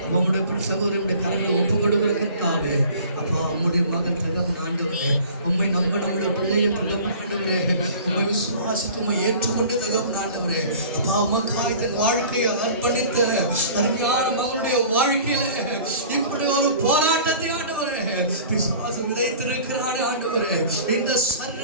அப்பா உங்களுடைய சகோதரியுடைய கரங்களை ஒப்பு கொடுக்கிறதுக்காகவே அப்பா உங்களுடைய மகன் தகப்பன் ஆண்டவரே, உண்மை நம்ப நம்முடைய பிள்ளைகள் தகப்பன் ஆண்டவரே, உண்மை விசுவாசித்து உண்மை ஏற்றுக்கொண்டு தகப்பன் ஆண்டவரே, அப்பா உமக்காய் தன் வாழ்க்கையை அர்ப்பணித்த அருமையான நம்முடைய வாழ்க்கையில இப்படி ஒரு போராட்டத்தை ஆண்டவரே பிசாசு விதைத்திருக்கிறான் ஆண்டவரே இந்த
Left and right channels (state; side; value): inverted; both; correlation -0.45